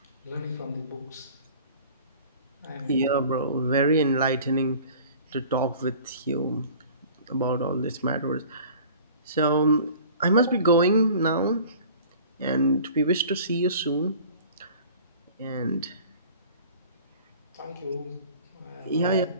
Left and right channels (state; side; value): inverted; both; correlation -0.46